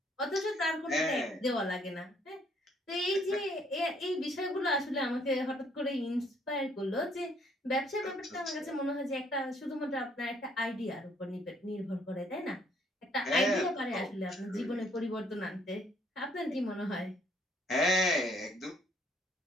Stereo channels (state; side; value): normal; both; correlation 0.65